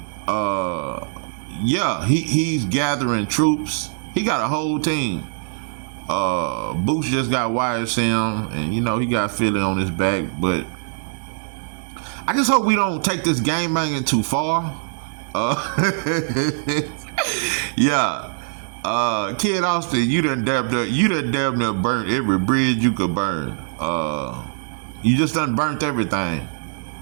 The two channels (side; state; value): left; silent; digital silence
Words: Yeah, he's gathering troops. He got a whole team. Boots just got YSM, and you know he got Philly on his back. But I just hope we don't take this game banging too far. Yeah. Kid Austin, you done damn near burnt every bridge you could burn. You just done burnt everything.